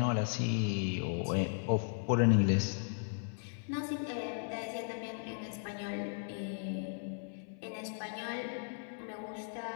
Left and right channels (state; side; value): silent; right; 54 dB below the other